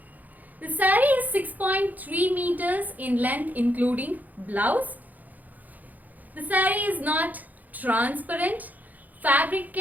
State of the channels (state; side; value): late; left; 0.081 ms